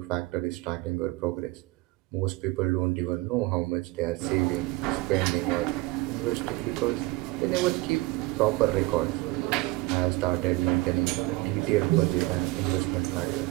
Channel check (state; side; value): quieter; left; 21.3 dB